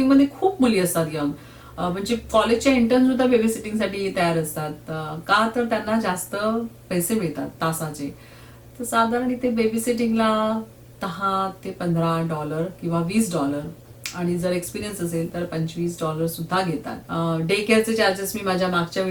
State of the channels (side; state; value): both; identical; correlation 1.00